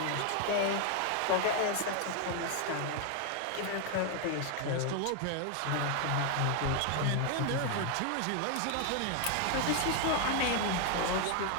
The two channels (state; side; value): different; both; correlation 0.00